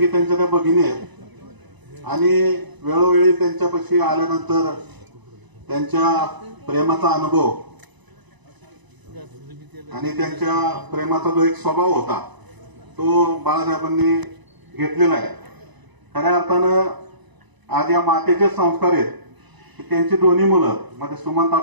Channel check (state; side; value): late; left; 1.0 ms